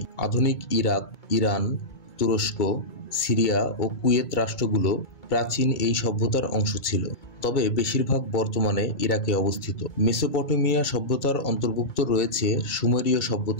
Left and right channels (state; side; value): late; right; 2.2 ms